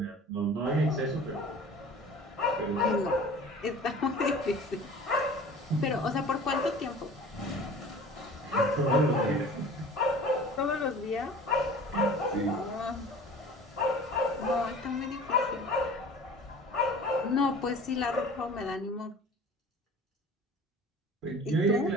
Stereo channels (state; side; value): normal; both; correlation 0.43